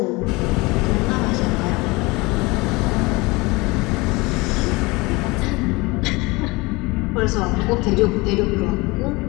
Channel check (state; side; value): quieter; right; 24.0 dB